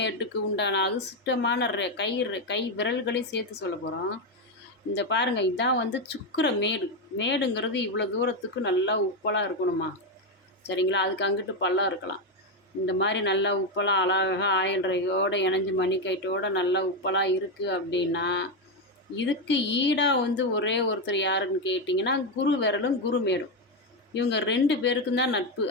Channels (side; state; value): both; normal; correlation 0.08